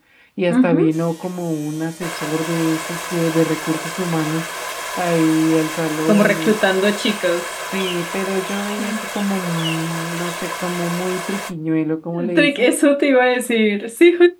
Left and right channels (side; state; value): both; identical; correlation 1.00